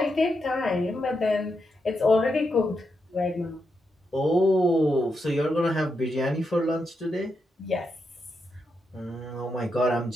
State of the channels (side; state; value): both; normal; correlation 0.84